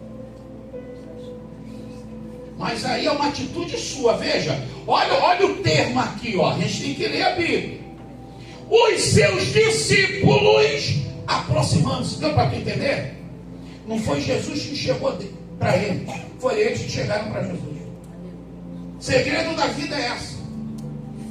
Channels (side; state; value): both; identical; correlation 1.00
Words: Mas aí é uma atitude sua. Veja, olha o termo aqui, ó. A gente tem que ler a Bíblia. Os seus discípulos aproximando-se. Deu para tu entender? Não foi Jesus que chegou para ele, foi eles que chegaram para Jesus. O segredo da vida é essa.